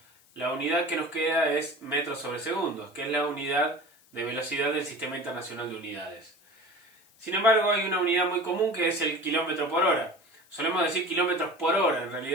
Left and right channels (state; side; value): noise; left; hiss, 30 dB below the sound